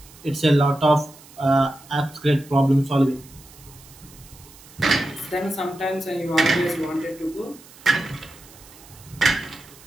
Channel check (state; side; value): noise; right; hiss, 22 dB below the sound